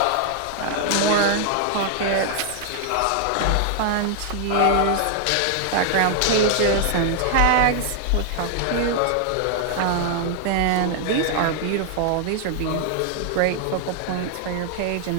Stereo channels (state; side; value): different; both; correlation 0.00